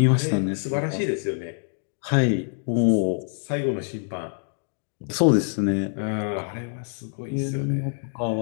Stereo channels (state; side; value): silent; right; 60 dB below the other